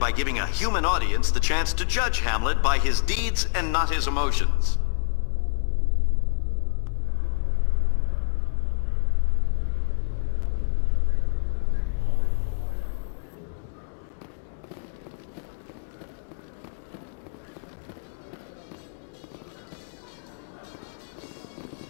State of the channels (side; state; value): right; silent; digital silence